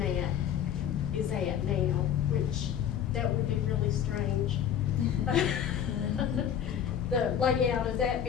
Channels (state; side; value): quieter; right; 9.2 dB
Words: is at now, which that would be really strange. The layout of that